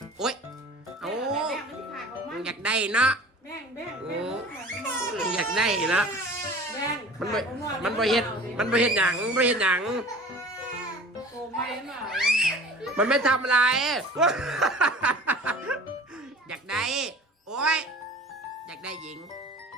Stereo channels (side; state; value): both; normal; correlation 0.42